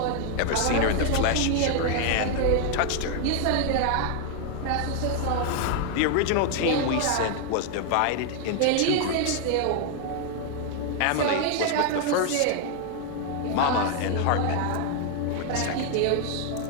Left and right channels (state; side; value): different; both; correlation 0.00